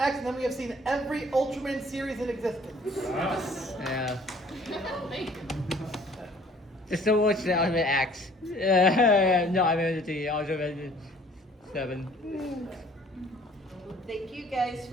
and then we have seen every Ultraman series in existence. Yeah. Thank you. Just so watch the Ultimate X. No, I mean the Ultimate 7. Thank you guys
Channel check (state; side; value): normal; both; correlation 0.55